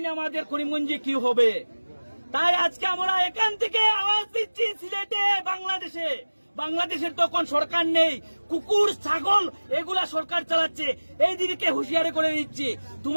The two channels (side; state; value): both; inverted; correlation -1.00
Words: আমাদের করিমগঞ্জে কি হবে। তাই আজকে আমরা এখান থেকে আওয়াজ দিচ্ছি সিলেটে, বাংলাদেশের তখন সরকার নেই, কুকুর ছাগল এগুলা সরকার চালাচ্ছে। এই দিকে হুঁশিয়ারি করে দিচ্ছি,